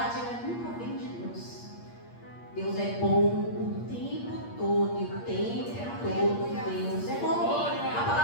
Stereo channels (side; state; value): right; late; 8.5 ms